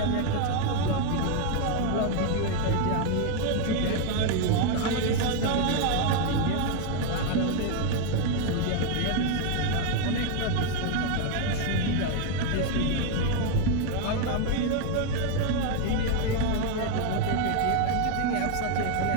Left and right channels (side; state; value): both; different; correlation 0.01